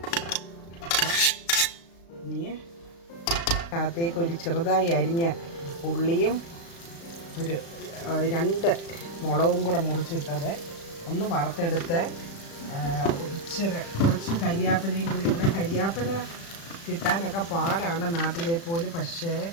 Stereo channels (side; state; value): right; late; 36 ms